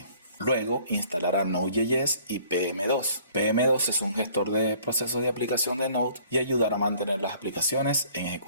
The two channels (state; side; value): inverted; both; correlation -0.56